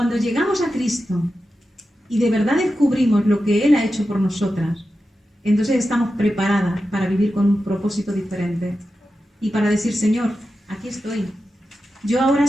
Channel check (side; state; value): both; normal; correlation 0.91